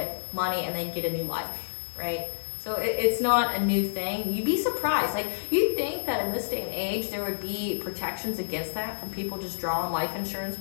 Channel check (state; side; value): silent; right; digital silence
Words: money, and then get a new life, right? So it's not a new thing. You'd be surprised. Like, you'd think that in this day and age, there would be protections against that from people just drawing life insurance